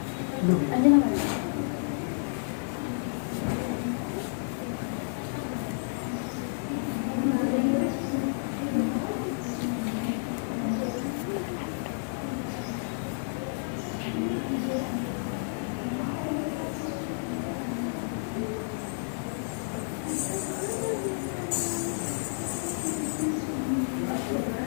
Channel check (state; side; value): silent; right; digital silence